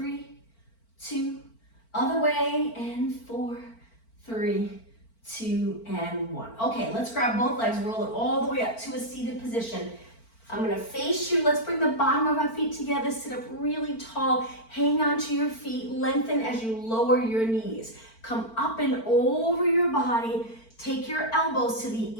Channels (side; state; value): right; late; 4.4 ms